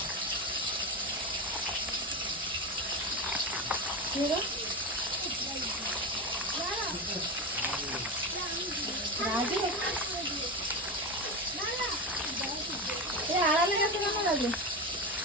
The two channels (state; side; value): normal; both; correlation 0.20